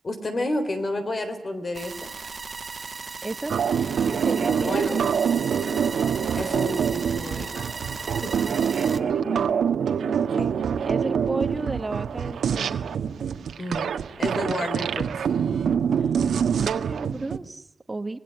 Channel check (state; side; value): quieter; left; 5.5 dB